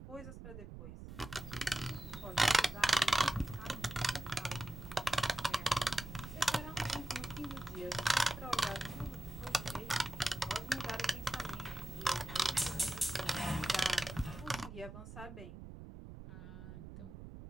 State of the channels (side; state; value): right; noise; rumble, 12 dB below the sound